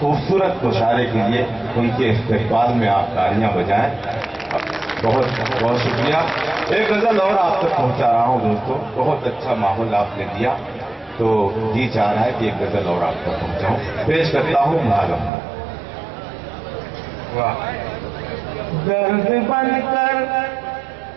مشاعرے کے لیے ان کے استقبال میں آپ تالیاں بجائیں. بہت بہت شکریہ. ایک غزل اور آپ تک پہنچا رہا ہوں دوستو. بہت اچھا ماحول آپ نے دیا تو جی چاہ رہا ہے کہ ایک غزل اور آپ تک پہنچاؤں. پیش کرتا ہوں معلوم. درد بن کر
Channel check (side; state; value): left; drops out; at 15.3 s